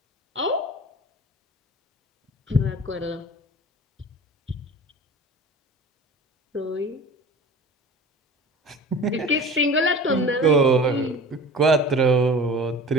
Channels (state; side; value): normal; both; correlation 0.39